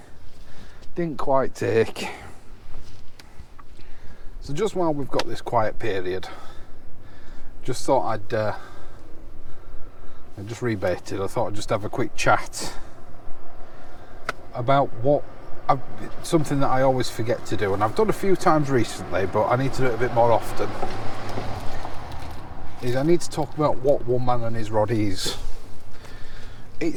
quite take. So just while we've got this quiet period, just thought I just rebaited. I thought I'd just have a quick chat about something that I always forget to do, and I've done a few times recently, but I need to do it a bit more often. Is I need to talk about what one man and his rod is.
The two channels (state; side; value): identical; both; correlation 1.00